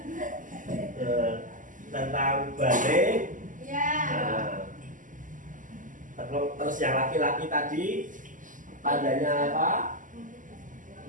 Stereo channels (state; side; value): late; left; 0.38 ms